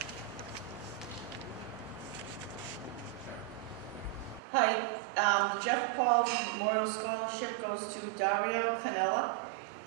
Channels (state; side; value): drops out; left; at 4.4 s